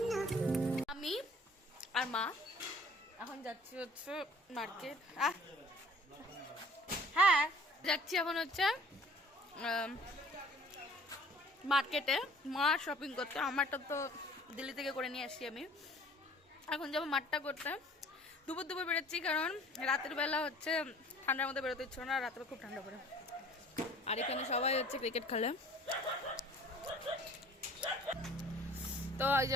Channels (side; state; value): both; normal; correlation 0.52